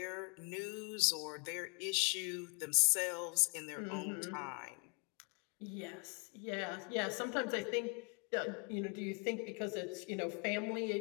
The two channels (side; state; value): right; quieter; 34.9 dB